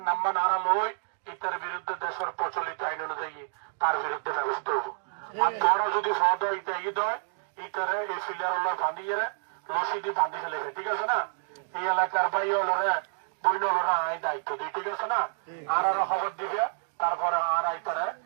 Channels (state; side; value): silent; left; digital silence